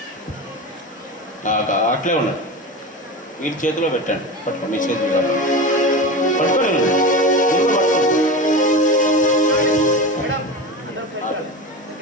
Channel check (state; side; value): normal; both; correlation 0.26